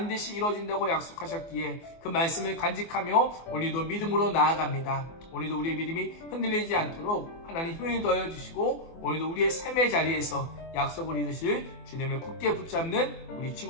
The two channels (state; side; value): late; right; 24 ms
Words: 이루어진다고 약속하셨기에 그 말씀을 간직하며 오늘도 믿음으로 나아갑니다. 오늘도 우리의 믿음이 흔들리지 않도록 하나님 힘을 더해 주시고 오늘도 우리의 삶의 자리에서 약속을 이루실 주님을 굳게 붙잡는 우리